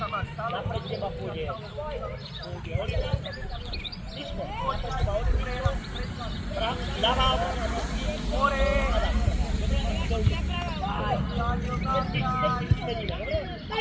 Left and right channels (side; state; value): both; identical; correlation 1.00